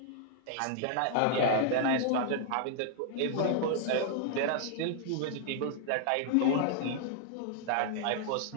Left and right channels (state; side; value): different; both; correlation -0.01